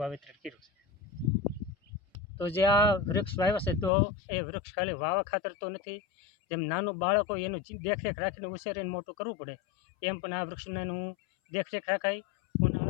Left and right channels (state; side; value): drops out; right; at 3.9 s